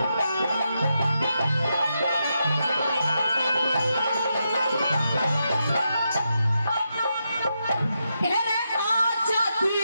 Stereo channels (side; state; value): both; inverted; correlation -0.84